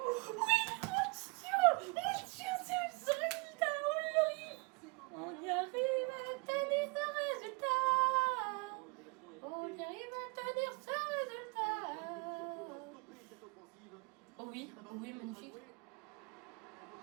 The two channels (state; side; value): quieter; left; 30.9 dB